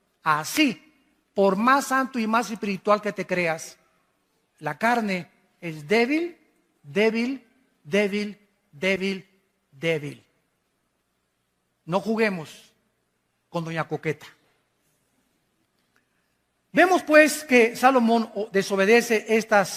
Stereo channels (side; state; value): both; identical; correlation 1.00